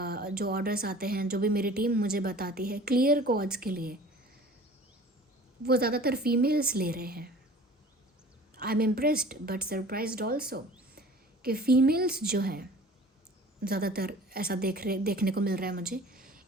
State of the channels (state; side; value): normal; both; correlation 0.45